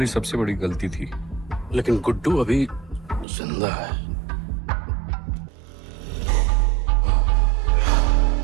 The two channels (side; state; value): left; drops out; at 3.2 s